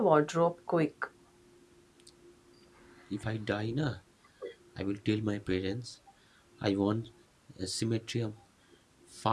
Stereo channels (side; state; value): both; identical; correlation 1.00